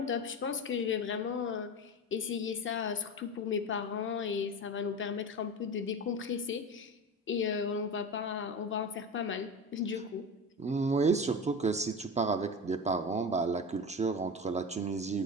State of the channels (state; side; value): normal; both; correlation 0.26